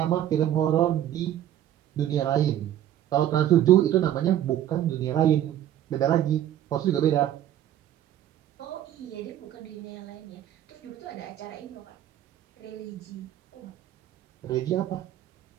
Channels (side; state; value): left; quieter; 11.7 dB